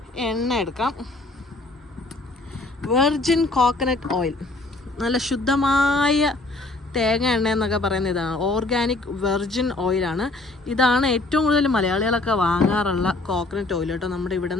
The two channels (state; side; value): quieter; right; 3.1 dB